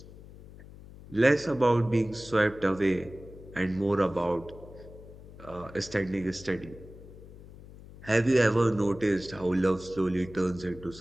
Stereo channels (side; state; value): left; noise; hum, 18 dB below the sound